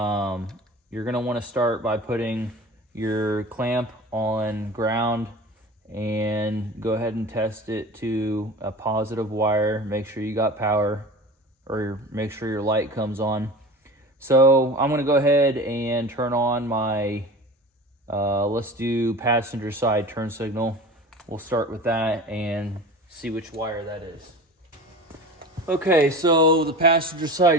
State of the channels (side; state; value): both; normal; correlation 0.35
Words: going to want to start by putting your clamp on ground and go ahead and test it to a positive wire. Make sure you got power, or make sure your light comes on. So I'm going to go ahead and turn on my, let's do passenger side turn signal. We'll start with that and see which wire that is. Okay, so the passenger